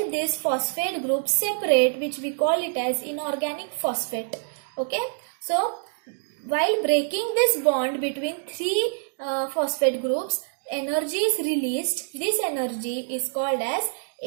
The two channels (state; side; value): silent; left; digital silence